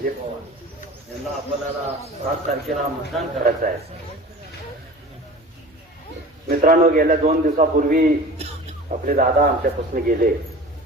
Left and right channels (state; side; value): normal; both; correlation 0.39